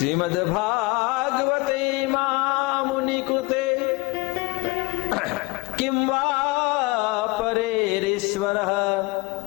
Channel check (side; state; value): right; quieter; 25.0 dB